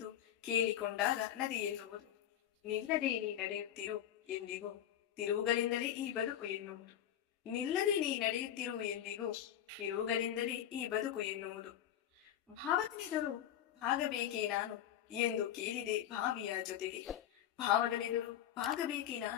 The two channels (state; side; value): quieter; right; 10.8 dB